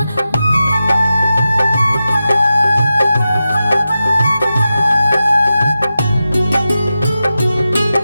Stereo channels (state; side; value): inverted; both; correlation -0.92